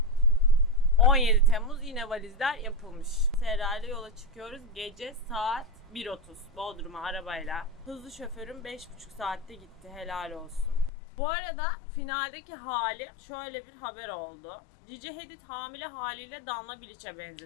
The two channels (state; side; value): drops out; right; at 10.9 s